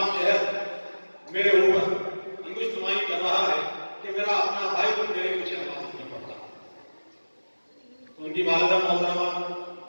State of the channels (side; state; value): both; inverted; correlation -1.00